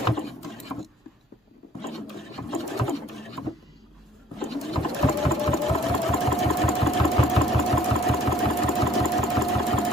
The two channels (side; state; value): both; normal; correlation 0.58